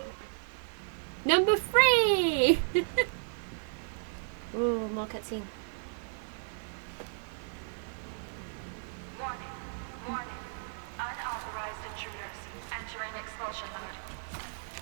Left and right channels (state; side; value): silent; left; digital silence